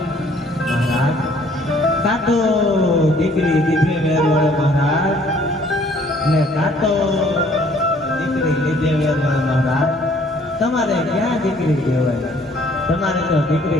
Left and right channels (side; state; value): both; normal; correlation 0.59